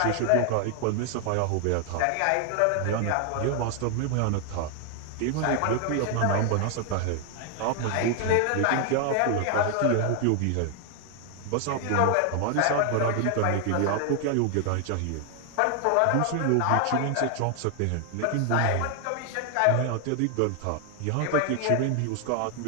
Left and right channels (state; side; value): different; both; correlation 0.00